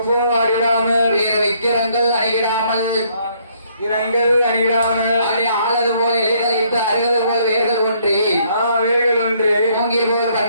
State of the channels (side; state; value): both; inverted; correlation -0.67